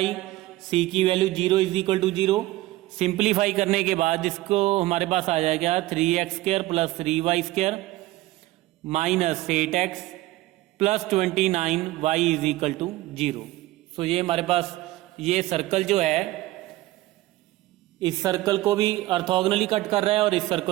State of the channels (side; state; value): left; quieter; 17.8 dB